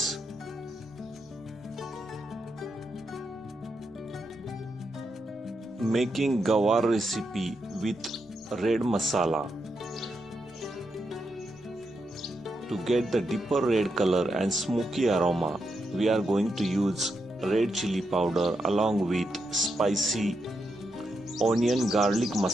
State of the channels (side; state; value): both; normal; correlation 0.83